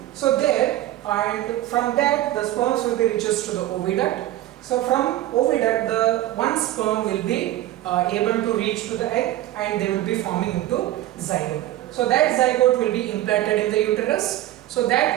So there, and from that the sperms will be reaches to the oviduct. So from oviduct, the one sperm will be able to reach to the egg, and they will be forming into zygote. So that zygote will be implanted in the uterus. So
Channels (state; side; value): quieter; left; 14.6 dB